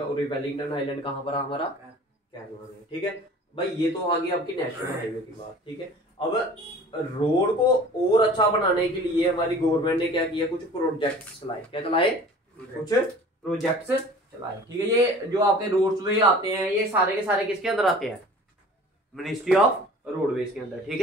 और ये वेलिंगटन आइलैंड कहाँ पर है? हमारा केरला में, ठीक है भाई। ये तो आ गई आपकी नेशनल हाईवे की बात, ठीक है। अब रोड को और अच्छा बनाने के लिए हमारी गवर्नमेंट ने क्या किया? कुछ प्रोजेक्ट्स चलाए। क्या चलाए? कुछ प्रोजेक्ट्स चलाए, ठीक है। ये जो आपके रोड्स वे आते हैं, ये सारे के सारे किसके अंदर आते हैं? मिनिस्ट्री ऑफ रोडवेज के अंदर, ठीक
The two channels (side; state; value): both; normal; correlation 0.45